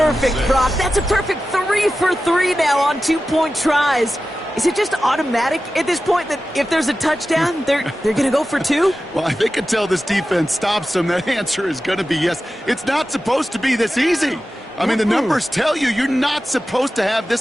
Brock. That's a perfect 3 for 3 now on 2-point tries. Is it just automatic at this point that if there's a touchdown, they're going to go for 2? Well, I think until this defense stops them, that answer is going to be yes. It's not supposed to be this easy. I mean, the numbers tell you you're not supposed to have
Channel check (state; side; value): normal; both; correlation 0.94